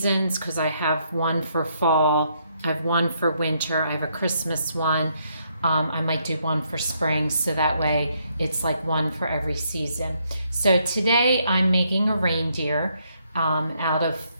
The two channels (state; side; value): inverted; both; correlation -0.73